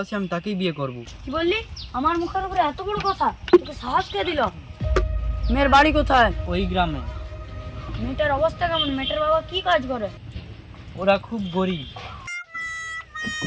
আমি তাকেই বিয়ে করব। কি বললি? আমার মুখের উপরে এত বড় কথা? তোকে সাহস কে দিল? মেয়ের বাড়ি কোথায়? ওই গ্রামে। মেয়েটার অবস্থা কেমন? মেয়েটার বাবা কি কাজ করে? ওরা খুব গরিব।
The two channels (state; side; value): identical; both; correlation 1.00